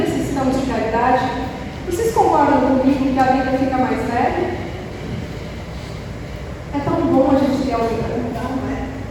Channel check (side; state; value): both; identical; correlation 1.00